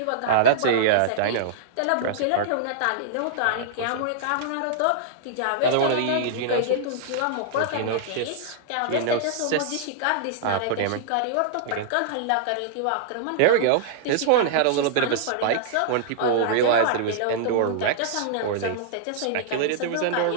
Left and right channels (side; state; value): both; different; correlation -0.01